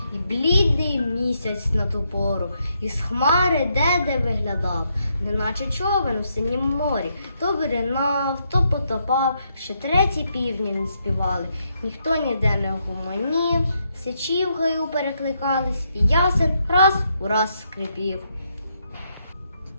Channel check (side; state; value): both; inverted; correlation -0.78